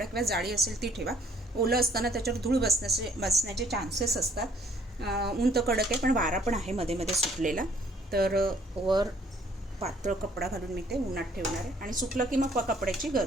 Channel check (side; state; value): both; normal; correlation 0.61